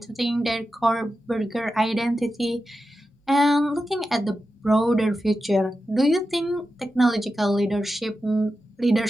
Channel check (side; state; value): both; normal; correlation 0.91